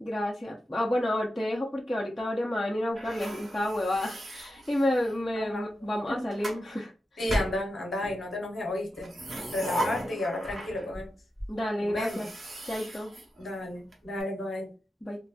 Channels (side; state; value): both; normal; correlation 0.89